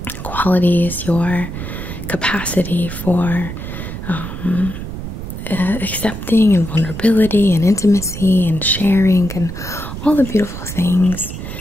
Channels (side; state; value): right; noise; rumble, 8 dB below the sound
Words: qualities, your capacity for accepting and vulnerability and intimacy and sharing and all the beautiful things,